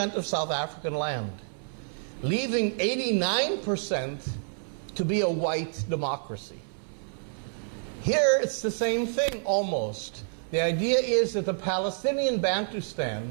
of South African land, leaving 89% to be a white democracy. Here it's the same thing almost. The idea is that the Palestinian Bantustan,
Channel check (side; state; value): left; silent; 59 dB below the other